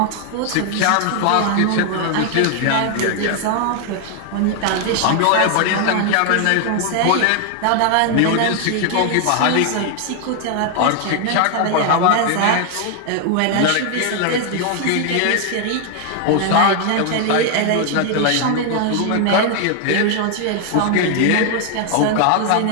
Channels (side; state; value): both; different; correlation 0.00